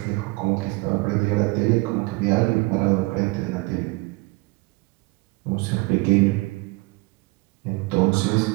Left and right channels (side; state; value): left; quieter; 25.1 dB